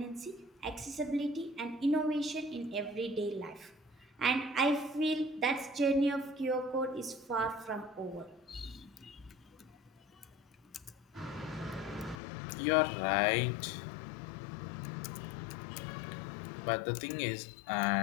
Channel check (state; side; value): drops out; right; at 12.2 s